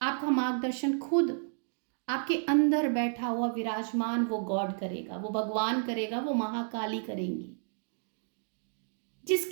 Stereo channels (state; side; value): silent; left; digital silence